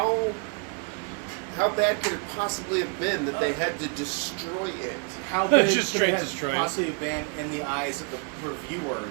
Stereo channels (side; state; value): left; quieter; 39.2 dB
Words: bad could it possibly have been that they had to destroy it? How big Just could straight it destroy it. have possibly been in the eyes of the